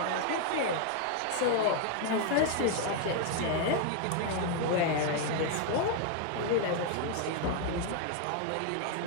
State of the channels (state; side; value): different; both; correlation 0.00